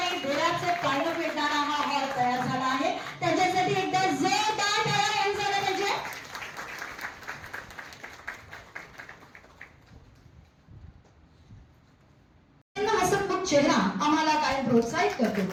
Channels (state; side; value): identical; both; correlation 1.00